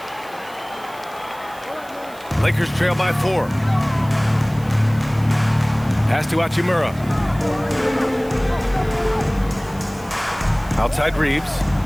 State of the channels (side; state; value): right; noise; hiss, 22 dB below the sound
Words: Lakers trail by 4. Pass to Hachimura. Outside Reeves.